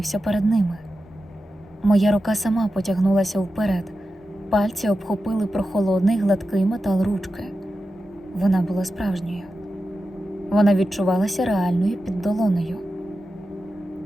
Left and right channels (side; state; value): both; normal; correlation 0.91